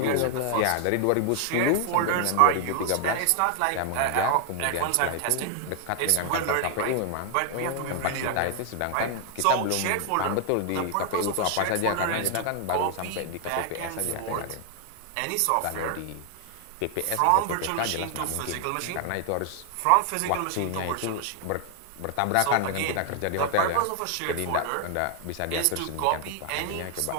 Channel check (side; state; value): both; different; correlation 0.00